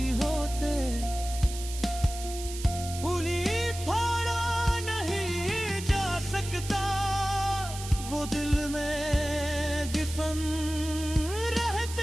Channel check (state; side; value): noise; right; hiss, 11 dB below the sound